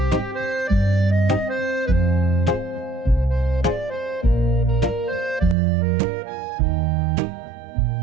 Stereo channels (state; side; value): drops out; left; at 5.6 s